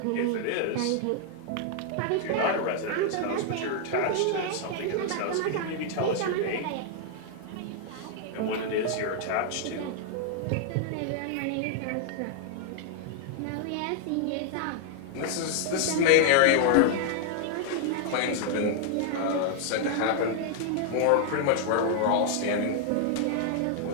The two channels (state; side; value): different; both; correlation 0.00